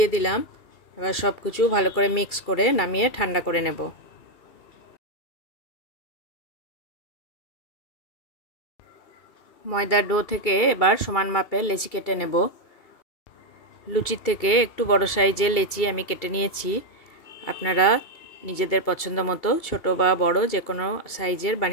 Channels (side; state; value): right; late; 2.7 ms